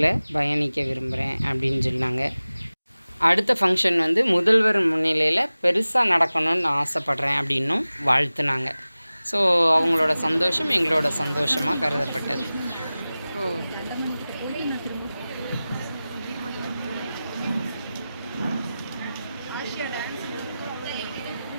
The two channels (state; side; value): inverted; both; correlation -0.97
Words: பயணிக்க விரும்புகிறேன் அப்படின்னு சொன்னாங்க. அடுத்த ஃபங்க்ஷன் முதல்வர் முன்னிலையில் பெருசாக நடக்கணும்னு ஆசைப்பட்றேன் அப்படின்னும் வாழ்த்துனாங்க. ஸோ அவங்களோட சந்தோஷம் எங்களோட சந்தோஷமாக கருதப்பட்டது.